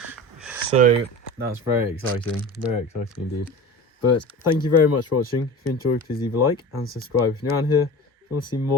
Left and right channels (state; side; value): normal; both; correlation 0.33